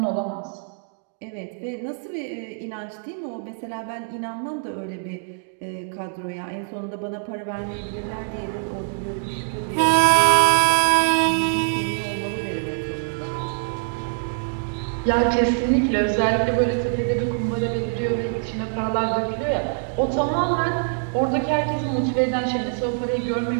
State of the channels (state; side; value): silent; left; digital silence